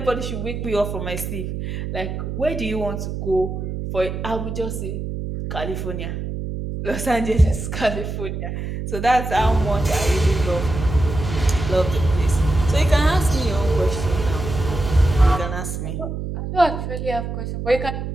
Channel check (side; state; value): right; noise; hum, 5 dB below the sound